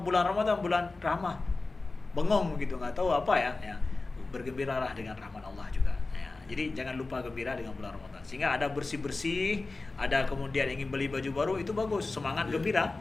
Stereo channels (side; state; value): right; quieter; 3.5 dB